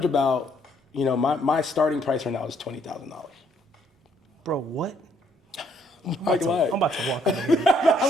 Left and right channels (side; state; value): both; normal; correlation 0.68